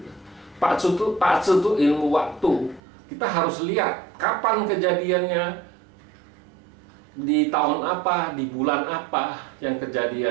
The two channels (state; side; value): drops out; left; at 2.8 s